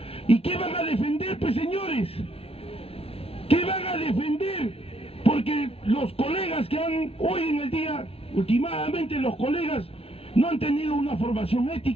¿Y qué van a defender, pues, señores? ¿Qué van a defender? Porque los colegas que han hoy en el día, últimamente los colegas no han tenido una formación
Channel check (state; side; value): late; right; 0.28 ms